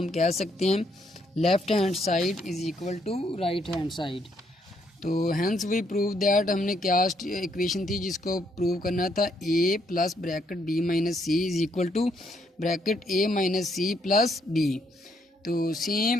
कह सकते हैं left hand side is equal to right hand side. तो हैंस वी प्रूव दैट, हमने क्या इक्वेशन थी जिसको प्रूव करना था, A plus bracket B minus C is equal to bracket A minus C plus B. तो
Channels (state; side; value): normal; both; correlation 0.72